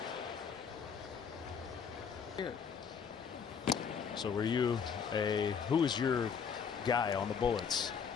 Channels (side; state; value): right; quieter; 6.6 dB